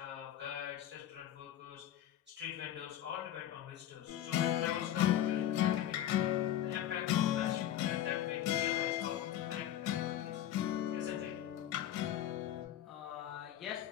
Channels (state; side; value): quieter; right; 11.8 dB